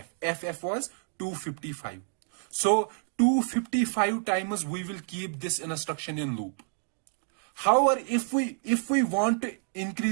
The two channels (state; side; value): silent; left; digital silence